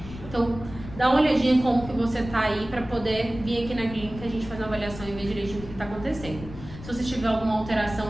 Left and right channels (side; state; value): left; noise; rumble, 13 dB below the sound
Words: Então, dá uma olhadinha em como que você tá aí para poder vir aqui na clínica, a gente faz uma avaliação e ver direitinho o que está acontecendo. Se você tiver alguma